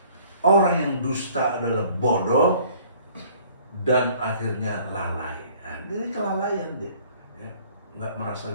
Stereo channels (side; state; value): both; inverted; correlation -0.55